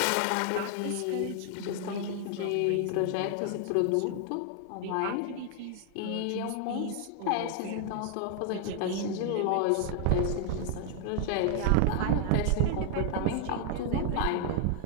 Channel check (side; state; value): both; different; correlation 0.00